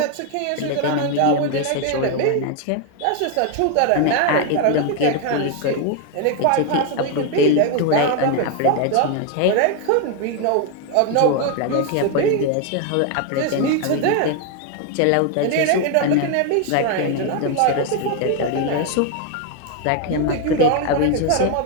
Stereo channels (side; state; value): both; different; correlation 0.01